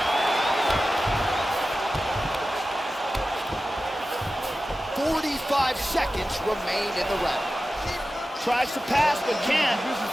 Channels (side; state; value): both; normal; correlation 0.94